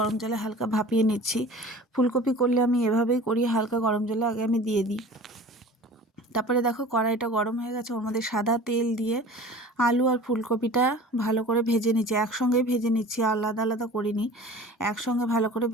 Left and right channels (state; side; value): normal; both; correlation 0.41